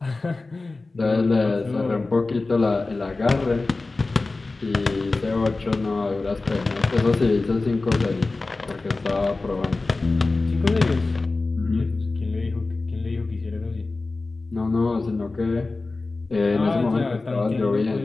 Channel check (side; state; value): right; quieter; 3.5 dB